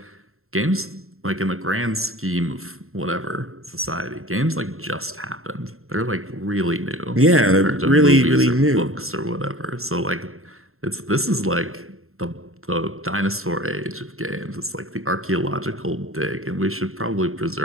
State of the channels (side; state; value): left; late; 0.62 ms